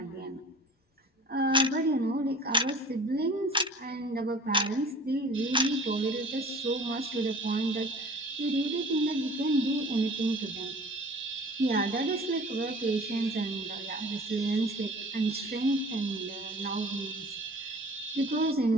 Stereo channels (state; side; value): normal; both; correlation 0.45